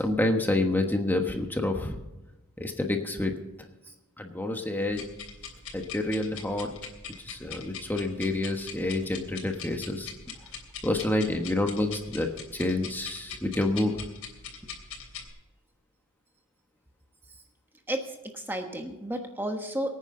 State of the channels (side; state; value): both; normal; correlation 0.69